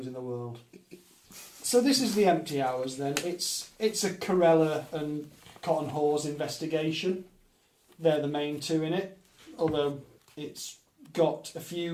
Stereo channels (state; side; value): identical; both; correlation 1.00